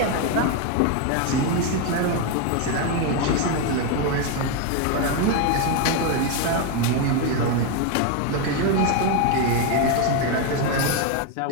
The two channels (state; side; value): different; both; correlation 0.02